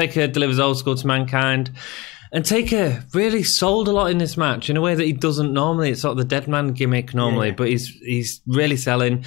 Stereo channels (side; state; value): right; quieter; 21.5 dB